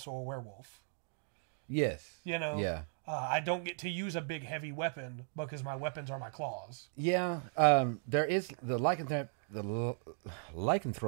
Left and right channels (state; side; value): silent; left; 53 dB below the other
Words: a werewolf. Yes. You know? Yeah. I don't get to use a big heavy weapon because my weapons are my claws. Yeah. There is the